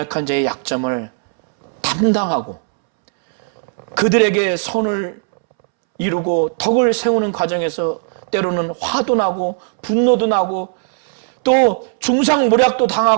자의 약점을 담당하고 그들에게 선을 이루고 덕을 세우는 과정에서 때로는 화도 나고 분노도 나고 또 중상모략도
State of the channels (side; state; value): left; silent; 68 dB below the other